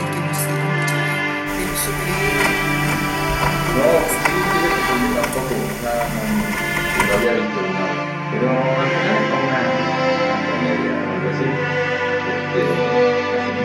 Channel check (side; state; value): both; identical; correlation 1.00